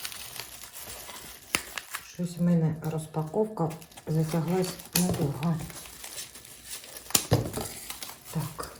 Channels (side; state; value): both; identical; correlation 1.00